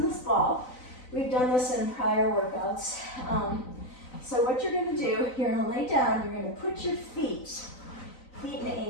this ball. We've done this in prior workouts. So what you're gonna do, you're gonna lay down, you're gonna put your feet and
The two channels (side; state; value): right; late; 3.9 ms